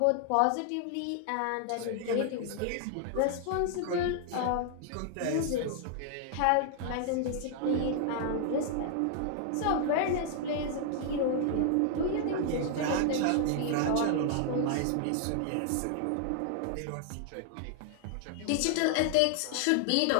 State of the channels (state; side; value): different; both; correlation 0.00